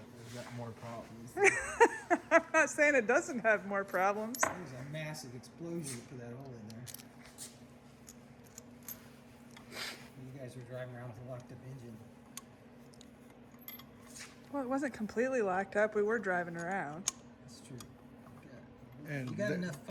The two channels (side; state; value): both; identical; correlation 1.00